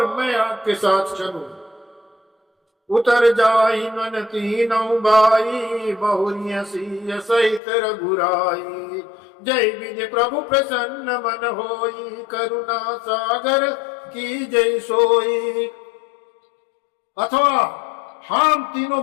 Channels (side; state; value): right; drops out; at 7.6 s